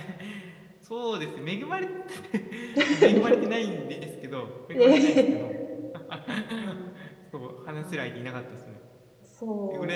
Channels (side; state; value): both; identical; correlation 1.00